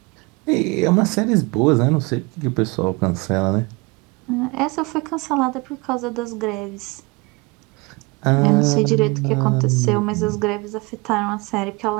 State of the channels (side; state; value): left; quieter; 26.1 dB